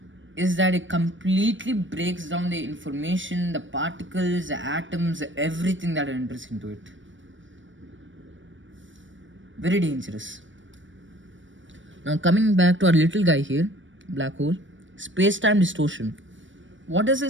is that it completely breaks down the information, the particles, the atoms, everything that enters into it. Very dangerous. Now coming back to our little guy here, black hole, space-time distortion. What does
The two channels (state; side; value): late; left; 0.56 ms